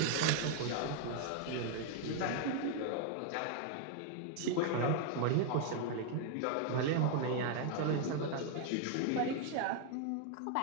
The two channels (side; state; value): both; different; correlation 0.00